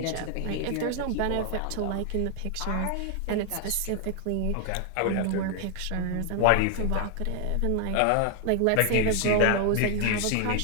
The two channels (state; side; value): different; both; correlation 0.00